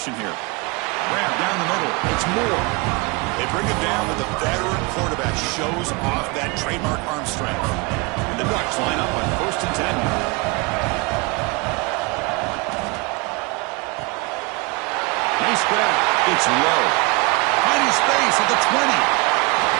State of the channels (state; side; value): quieter; left; 27.1 dB